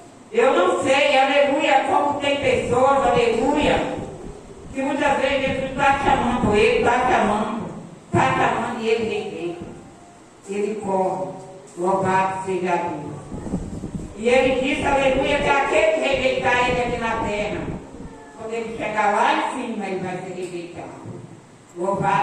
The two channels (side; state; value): both; identical; correlation 1.00